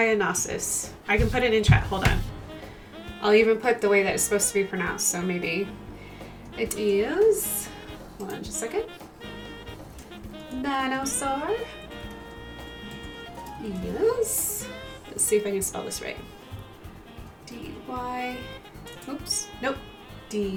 I can put it in chat. Hold on. I'll even put the way that it's supposed to be pronounced. So maybe it is. Hold on just a second. Dinosaur. Yes. Let's see if I can spell this right. D-Y. Oops. Nope.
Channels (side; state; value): both; identical; correlation 1.00